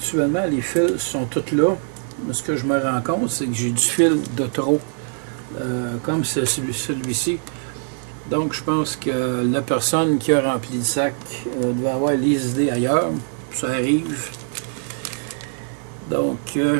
les fils sont tous là. Mais ce que je me rends compte, c'est que j'ai du fil de trop, comme celui-ci. Donc, je pense que la personne qui a rempli le sac doit avoir les idées ailleurs. Ça arrive. Donc,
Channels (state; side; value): silent; left; 55 dB below the other